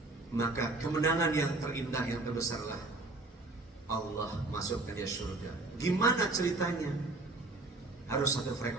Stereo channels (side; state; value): left; quieter; 3.1 dB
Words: Maka kemenangan yang terindah, yang terbesarlah Allah masukkan dia surga. Gimana ceritanya? Harus satu